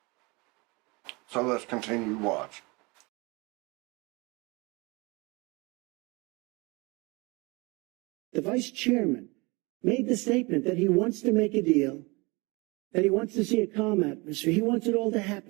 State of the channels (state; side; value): quieter; left; 26.4 dB